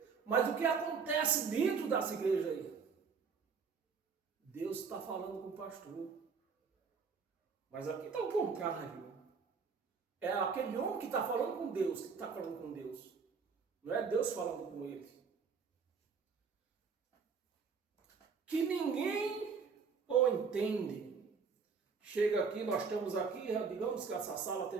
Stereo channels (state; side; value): quieter; left; 5.6 dB